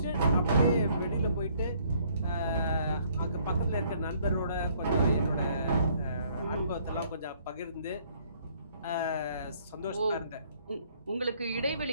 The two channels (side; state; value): both; inverted; correlation -0.63